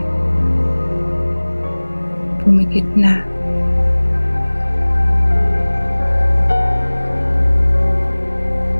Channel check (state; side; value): inverted; both; correlation -1.00